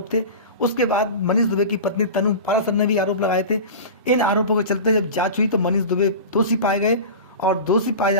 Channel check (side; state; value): both; inverted; correlation -0.31